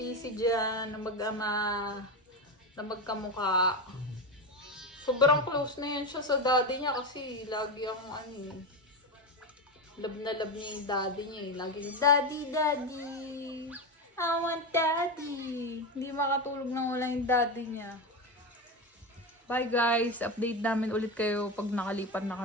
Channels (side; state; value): both; normal; correlation 0.16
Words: dyan na mag-ama, na magkamukha. Sobrang close na yan siya sa daddy niya kasi lagi ang love na love niya yung daddy niya eh. Lagi daddy, daddy. I want daddy. Hindi makatulog nang wala yung daddy niya. Bye guys. Update namin ulit kayo pag nakalipat na